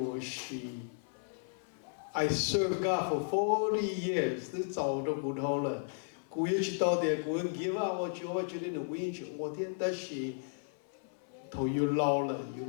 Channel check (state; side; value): silent; right; 55 dB below the other